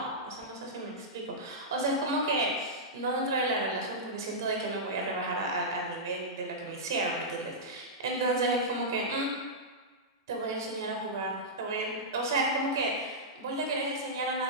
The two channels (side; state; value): both; normal; correlation -0.12